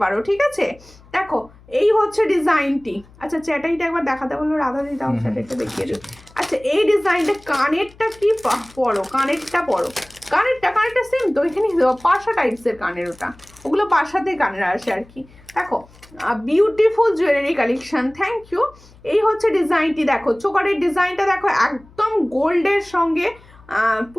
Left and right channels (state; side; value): noise; left; hum, 25 dB below the sound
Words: পারো, ঠিক আছে? দেখো এই হচ্ছে ডিজাইনটি। আচ্ছা চ্যাটাইটা একবার দেখাতে বললো রাধা দি, দাও চ্যাটাইটা দেখিয়ে দিই। আচ্ছা এই ডিজাইনটা, কানেরটা কি পরো, কানেরটা পরো, কানেরটা সেম তো, এখানে পাশা টাইপসের কানের, ওগুলো পাশাতে কানের আসে আর কি। দেখো beautiful jewellery collection, thank you. এই হচ্ছে ডিজাইনটি, দেখো চোকারের ডিজাইনটা দেখো, একদম গোল্ডের সঙ্গে